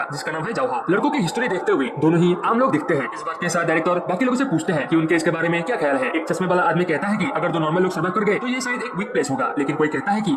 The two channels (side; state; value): both; identical; correlation 1.00